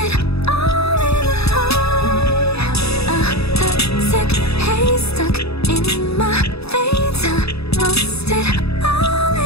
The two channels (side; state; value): right; late; 0.78 ms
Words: all in the high. The sick haze stuck in my veins. I lost it all